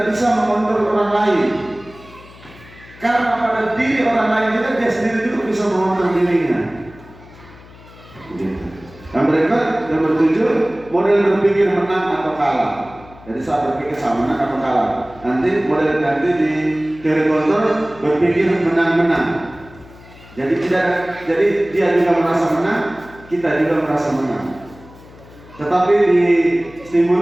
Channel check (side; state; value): left; noise; hum, 21 dB below the sound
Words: bisa mengontrol orang lain. Karena pada diri orang lain juga dia sendiri juga bisa mengontrol dirinya. Yang berikut nomor 7, model berpikir menang atau kalah. Jadi saya berpikir sama menang atau kalah. Nanti di teori kontrol berpikir menang-menang. Jadi dia juga merasa menang, kita juga merasa menang. Tetapi di